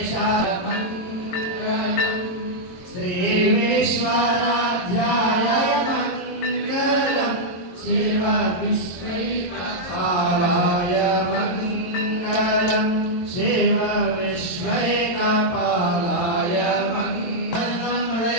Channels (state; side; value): late; right; 22 ms